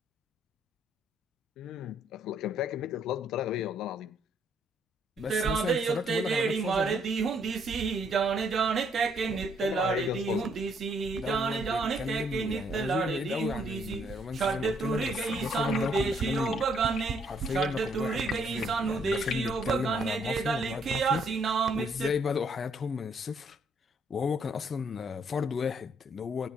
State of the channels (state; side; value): normal; both; correlation 0.69